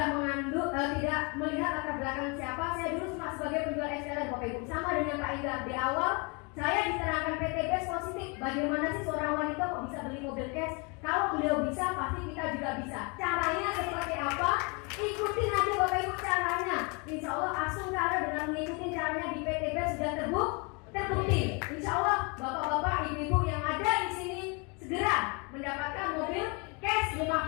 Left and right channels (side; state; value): right; quieter; 31.5 dB